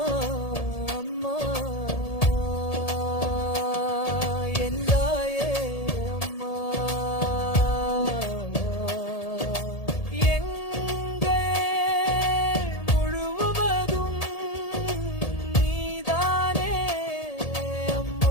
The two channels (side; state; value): right; late; 1.7 ms